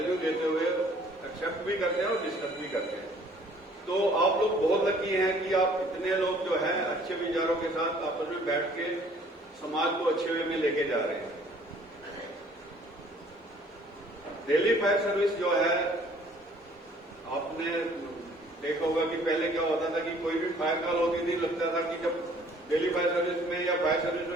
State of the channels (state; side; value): normal; both; correlation 0.57